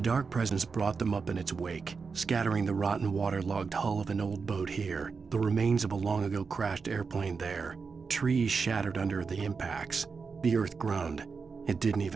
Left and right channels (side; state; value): left; quieter; 5.1 dB